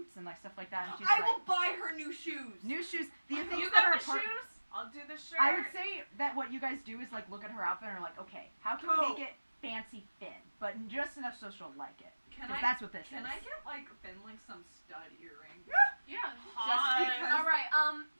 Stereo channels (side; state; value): both; inverted; correlation -1.00